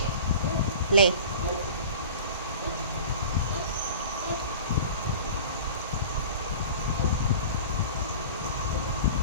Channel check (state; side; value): inverted; both; correlation -0.39